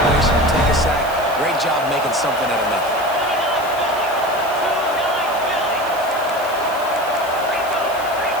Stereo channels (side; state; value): right; noise; hiss, 17 dB below the sound